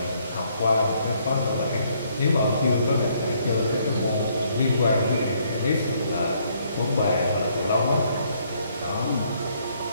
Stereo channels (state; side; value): inverted; both; correlation -0.69